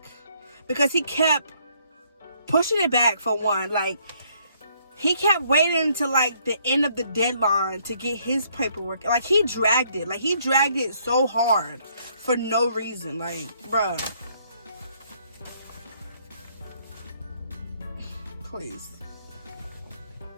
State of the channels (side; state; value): both; inverted; correlation -0.68